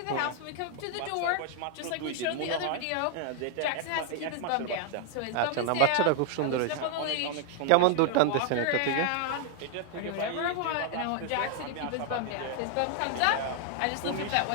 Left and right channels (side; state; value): both; different; correlation 0.00